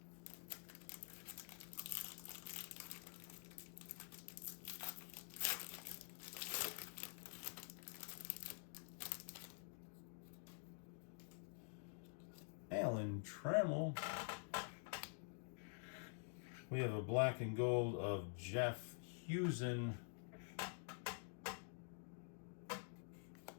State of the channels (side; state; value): right; silent; digital silence